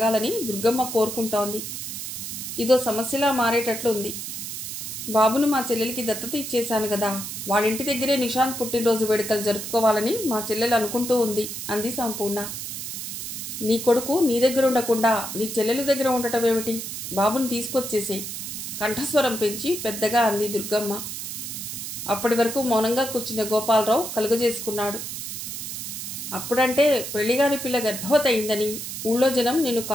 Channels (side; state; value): right; noise; hiss, 6 dB below the sound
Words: దుర్గమ్మ కోరుకుంటోంది. ఇదో సమస్యలా మారేటట్లుంది. బాబును మా చెల్లెలికి దత్తత ఇచ్చేశాను కదా, వాళ్ళింటి దగ్గరే నిశాంత్ పుట్టినరోజు వేడుకలు జరుపుకోవాలని మా చెల్లెలు అనుకుంటూ ఉంది అంది సంపూర్ణ. నీ కొడుకు నీ దగ్గర ఉండకుండా నీ చెల్లెలు దగ్గర ఉండటమేమిటి? బాబుని తీసుకొచ్చేసేయ్ కంఠస్వరం పెంచి పెద్దగా అంది దుర్గమ్మ. అప్పటి వరకు మౌనంగా కూర్చున్న గోపాలరావు కలుగజేసుకున్నాడు. అప్పుడంటే పెళ్లిగాని పిల్ల గర్భవతి అయిందని ఊళ్ళో జనం నిన్ను